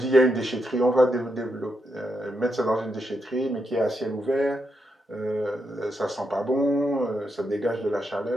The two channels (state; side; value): normal; both; correlation 0.83